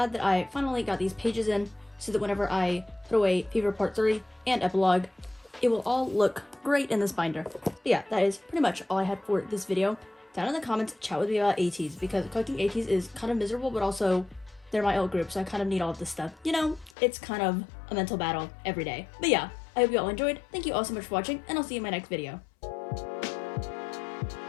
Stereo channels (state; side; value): drops out; right; at 16.9 s